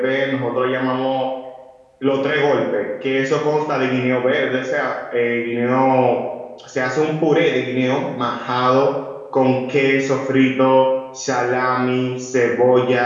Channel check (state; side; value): identical; both; correlation 1.00